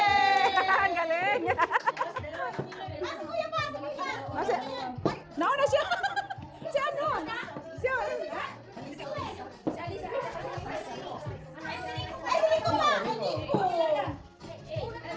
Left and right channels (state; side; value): identical; both; correlation 1.00